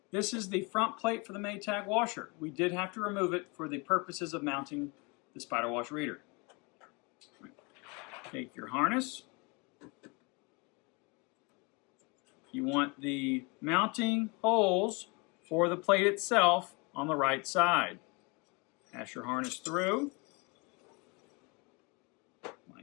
This is the front plate for the Maytag washer. We did have to remove it for the purposes of mounting the SpyderWash reader. Take your harness. You want the mounting holes for the plate itself on the right side. Pass your harness through,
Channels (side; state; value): right; quieter; 29.6 dB